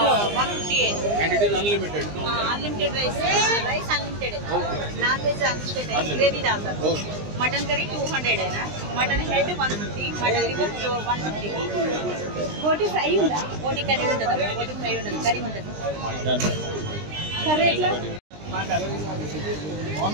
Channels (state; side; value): late; left; 20 ms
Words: 158। And it is unlimited. Unlimited rice unlimited है। नॉन वेज अनलिमिटेड है, ग्रेवी डालता है। मटन करी 200 है ना, मटन हेड 150, मटन लिवर 150। बोटी फ्राई ఉందా? बोटी కర్రీ ఉంటది, बोटी ఫ్రై ఉండదు, కర్రీ ఉంటది. కర్రీ ఎట్లా?